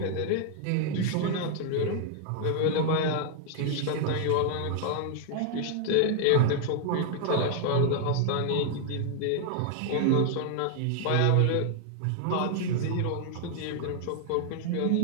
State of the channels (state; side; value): different; both; correlation 0.00